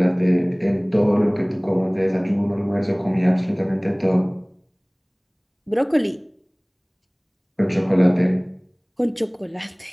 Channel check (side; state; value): both; identical; correlation 1.00